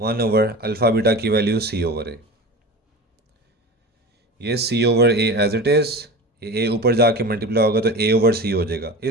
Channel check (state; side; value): normal; both; correlation 0.31